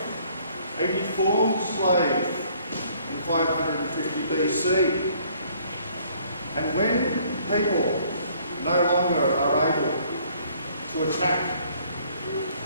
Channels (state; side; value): inverted; both; correlation -0.61